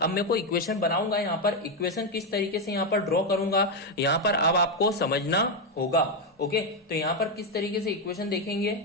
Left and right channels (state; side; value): normal; both; correlation 0.05